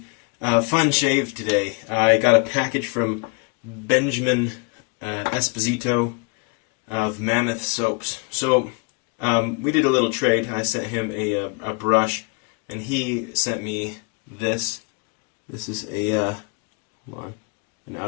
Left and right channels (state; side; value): quieter; right; 30.9 dB